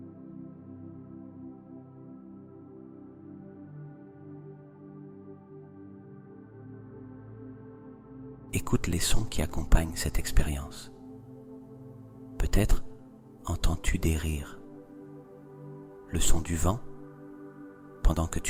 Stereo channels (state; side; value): identical; both; correlation 1.00